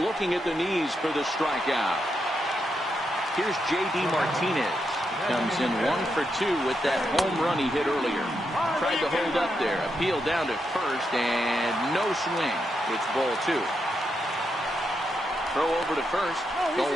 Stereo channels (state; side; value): normal; both; correlation 0.83